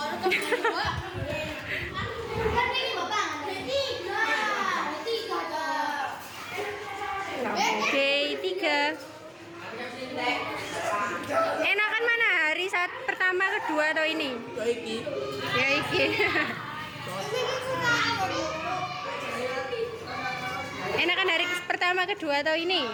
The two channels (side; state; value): both; identical; correlation 1.00